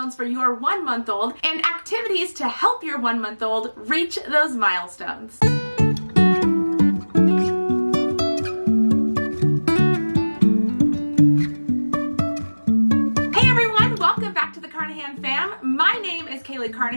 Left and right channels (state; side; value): inverted; both; correlation -1.00